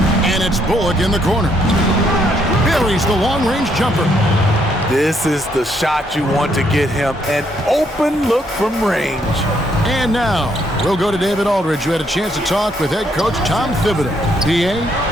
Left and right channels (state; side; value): normal; both; correlation 0.72